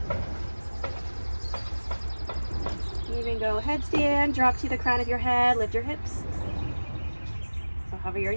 Even go headstand, drop to the crown of your head, lift your hips. So hover your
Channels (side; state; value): both; inverted; correlation -1.00